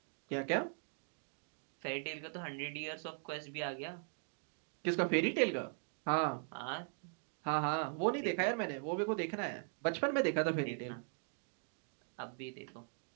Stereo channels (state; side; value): silent; left; 51 dB below the other